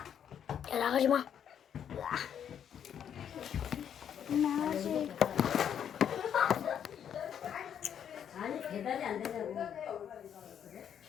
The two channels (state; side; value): quieter; right; 8.8 dB